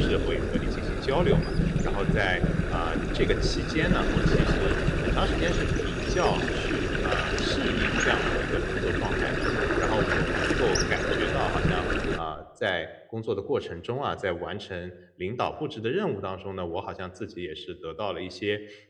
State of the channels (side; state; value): both; identical; correlation 1.00